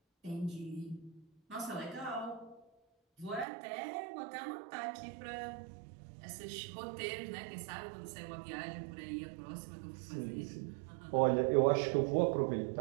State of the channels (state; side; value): drops out; left; at 3.5 s